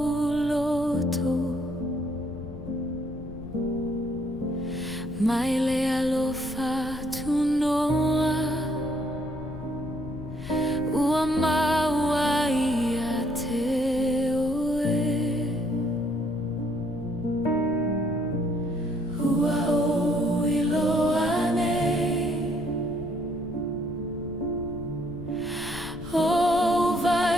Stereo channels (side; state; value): left; noise; rumble, 13 dB below the sound